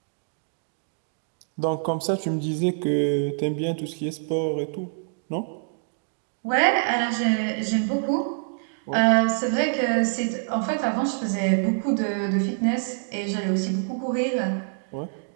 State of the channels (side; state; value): left; silent; digital silence